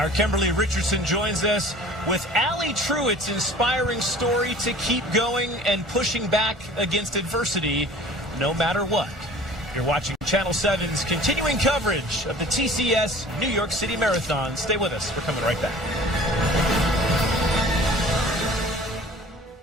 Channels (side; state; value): both; normal; correlation 0.46